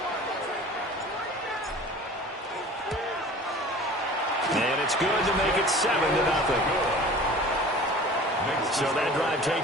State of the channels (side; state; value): both; normal; correlation 0.42